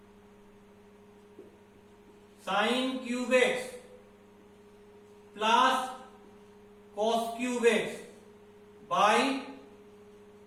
sin cube x plus cos cube x by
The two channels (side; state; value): both; identical; correlation 1.00